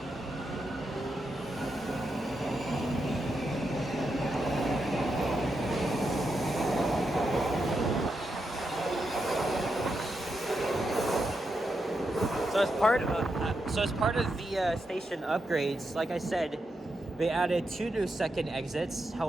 So as part of the station upgrades, like I said, they added 2 new second exits.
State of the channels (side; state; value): both; normal; correlation 0.85